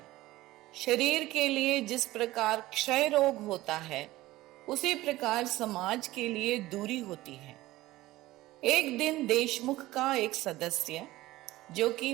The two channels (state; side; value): quieter; left; 17.3 dB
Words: शरीर के लिए जिस प्रकार क्षय रोग होता है उसी प्रकार समाज के लिए दूरी होती है। एक दिन देशमुख का एक सदस्य जो कि